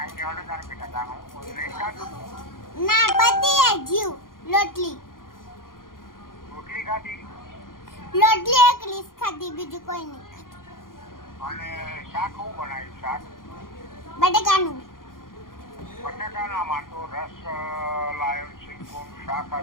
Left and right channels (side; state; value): right; late; 0.90 ms